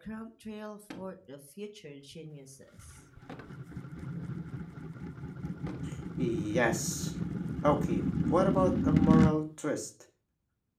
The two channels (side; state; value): both; identical; correlation 1.00